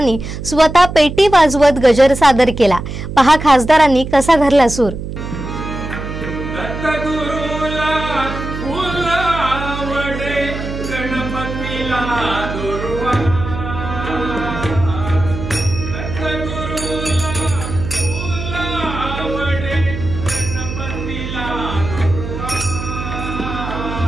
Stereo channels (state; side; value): noise; right; hum, 7 dB below the sound